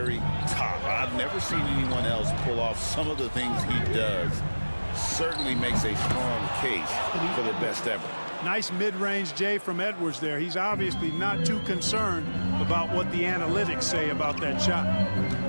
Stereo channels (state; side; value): inverted; both; correlation -1.00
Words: top. I've never seen anyone else pull off some of the things he does. Certainly makes a strong case for the best ever. Nice mid-range J from Edwards there. He's obviously not too concerned about what the analytics say about that shot.